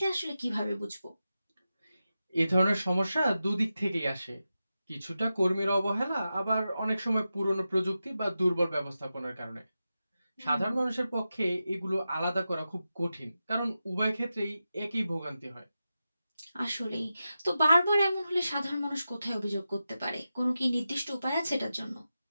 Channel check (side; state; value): both; inverted; correlation -0.91